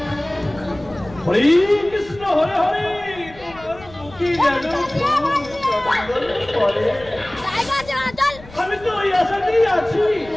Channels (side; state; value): left; noise; rumble, 20 dB below the sound